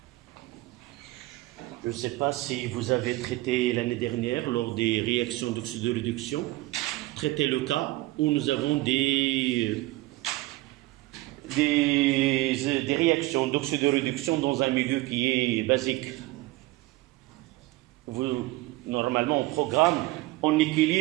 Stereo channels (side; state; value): left; quieter; 19.3 dB